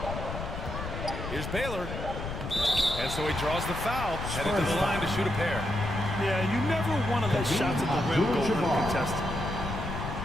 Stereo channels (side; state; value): left; noise; rumble, 6 dB below the sound